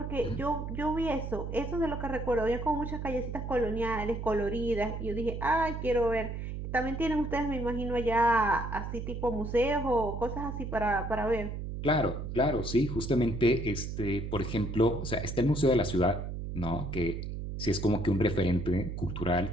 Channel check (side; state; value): right; noise; hum, 5 dB below the sound